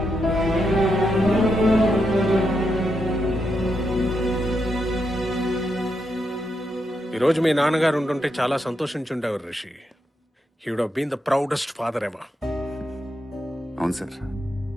ఈరోజు మీ నాన్నగారు ఉంటుంటే చాలా సంతోషించుండేవారు Rishi. He would have been the proudest father ever. అవును సార్,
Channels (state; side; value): normal; both; correlation 0.83